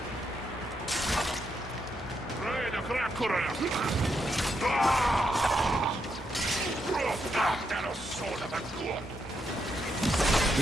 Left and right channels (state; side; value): normal; both; correlation 0.80